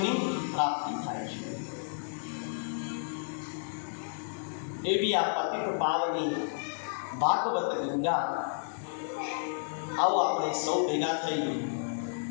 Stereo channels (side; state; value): right; silent; digital silence